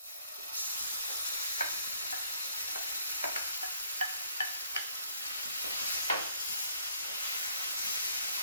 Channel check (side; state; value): both; inverted; correlation -0.63